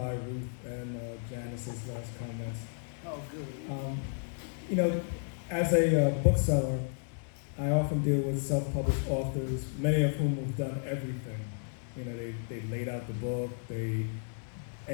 Ruth and Janice's last comments. Oh, good. As a bookseller, I often deal with self-published authors, many of whom have done everything. They laid out the book, they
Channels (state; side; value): silent; right; digital silence